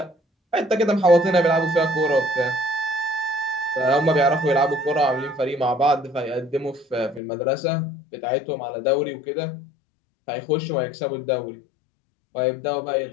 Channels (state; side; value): drops out; right; at 7.2 s